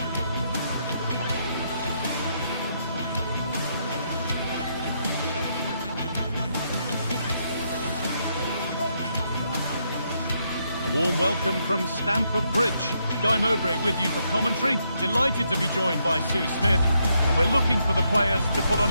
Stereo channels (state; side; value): inverted; both; correlation -0.77